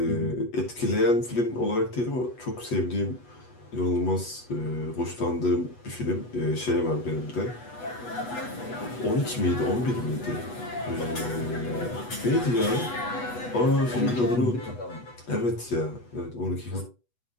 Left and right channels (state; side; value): late; right; 8.2 ms